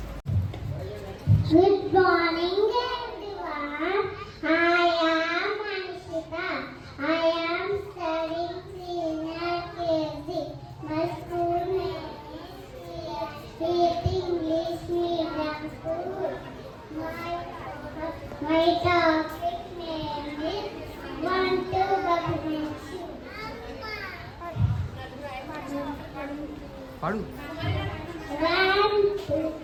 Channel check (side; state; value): both; identical; correlation 1.00